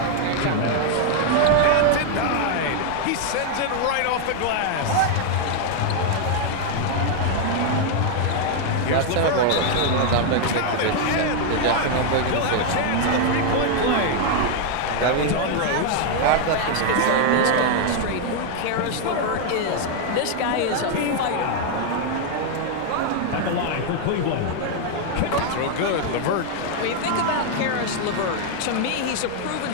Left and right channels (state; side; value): different; both; correlation 0.00